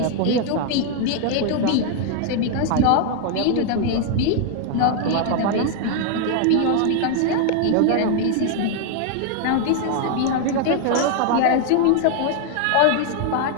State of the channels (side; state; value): both; different; correlation 0.00